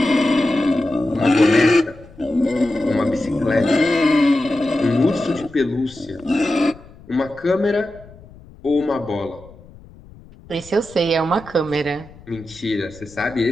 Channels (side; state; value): left; noise; rumble, 22 dB below the sound